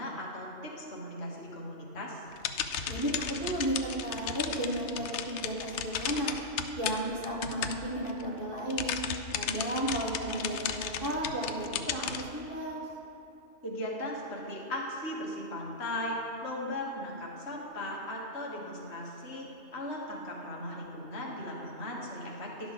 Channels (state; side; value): late; right; 3.2 ms